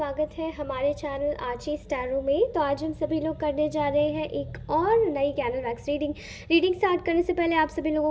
है हमारे चैनल आची स्टैरो में। तो आज हम सभी लोग करने जा रहे हैं एक और नई कैनल वैक्स रीडिंग स्टार्ट करने से पहले आप सभी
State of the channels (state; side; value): identical; both; correlation 1.00